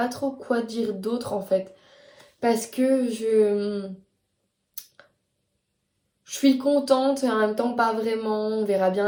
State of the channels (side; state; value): both; identical; correlation 1.00